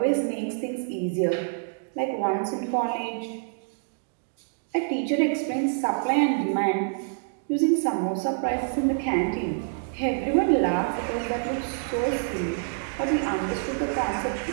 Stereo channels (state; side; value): silent; left; digital silence